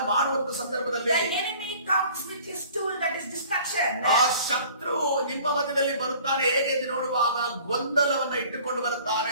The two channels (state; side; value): inverted; both; correlation -0.50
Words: ಮಾಡುವಂತ ಸಂದರ್ಭದಲ್ಲಿ the enemy comes with his tool, that is distraction. ಆ ಶತ್ರು ನಿಮ್ಮ ಮಧ್ಯದಲ್ಲಿ ಬರುತ್ತಾನೆ. ಹೇಗೆ ಎಂದು ನೋಡುವಾಗ ಗೊಂದಲವನ್ನ ಇಟ್ಟುಕೊಂಡು